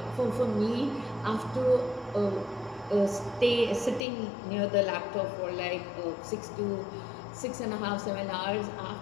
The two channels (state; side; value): drops out; right; at 4.0 s